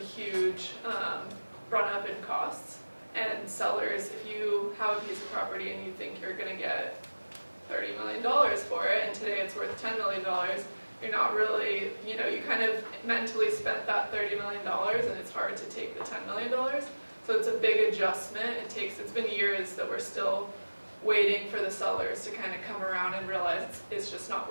run up in costs. And sellers, if you have a piece of property and you think you're going to get $30 million for it, and today it's worth $10 million, you're not really, you kind of mentally spent that $30 million, and it's hard to take the $10 million. So it's a big adjustment. It's been years that we're still waiting for the sellers to kind of come around and realize it's just not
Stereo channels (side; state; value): both; inverted; correlation -1.00